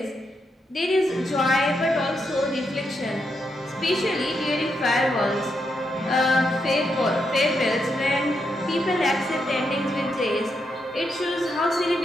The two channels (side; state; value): both; normal; correlation 0.82